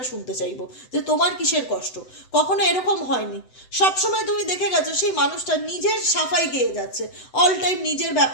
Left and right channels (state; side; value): late; right; 7.9 ms